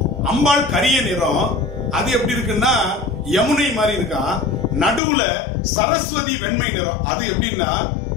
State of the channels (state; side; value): drops out; right; at 5.0 s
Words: அம்பாள் கரிய நிறம், அது எப்படி இருக்குன்னா யமுனை மாதிரி இருக்கான். நடுவுல சரஸ்வதி வெண்மை நிறம், அது எப்படின்னா